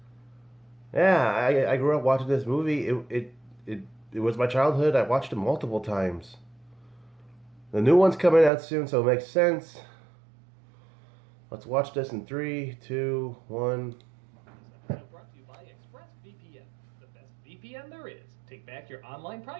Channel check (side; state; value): left; drops out; at 8.5 s